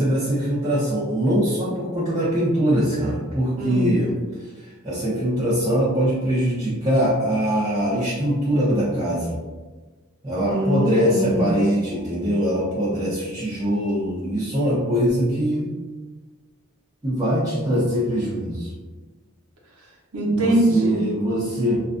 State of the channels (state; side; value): normal; both; correlation 0.55